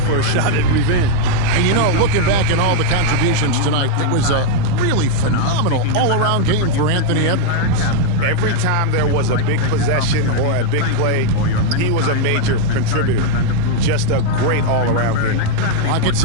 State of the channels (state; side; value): different; both; correlation 0.00